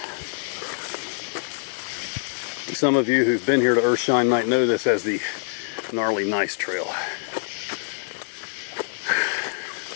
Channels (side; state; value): right; silent; digital silence